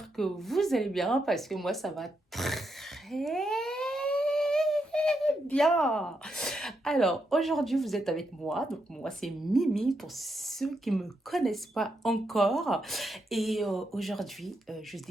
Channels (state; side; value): normal; both; correlation 0.82